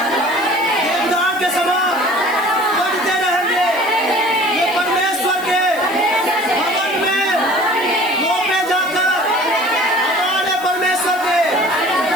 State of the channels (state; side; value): noise; right; hiss, 18 dB below the sound